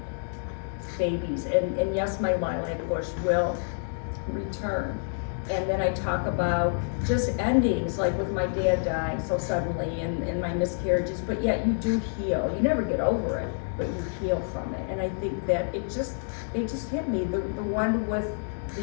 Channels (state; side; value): silent; right; digital silence